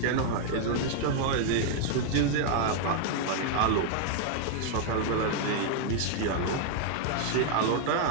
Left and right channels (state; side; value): different; both; correlation 0.00